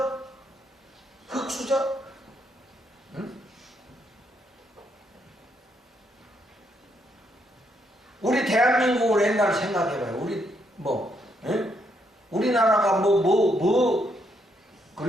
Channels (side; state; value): both; normal; correlation 0.75